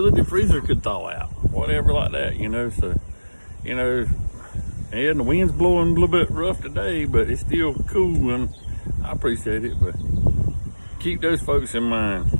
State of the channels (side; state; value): both; inverted; correlation -1.00